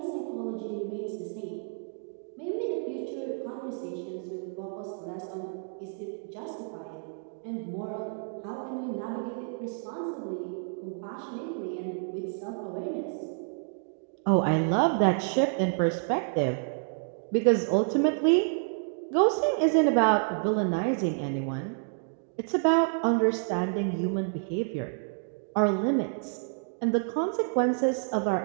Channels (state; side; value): silent; left; 58 dB below the other